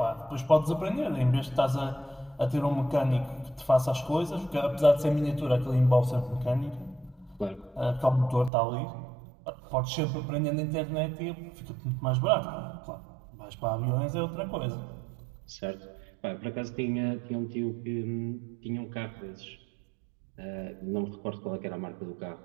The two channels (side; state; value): left; drops out; at 8.5 s